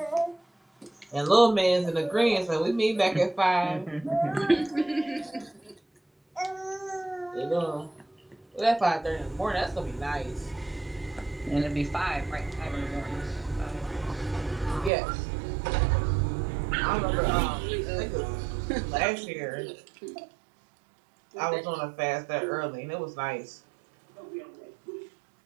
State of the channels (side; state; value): left; drops out; at 14.9 s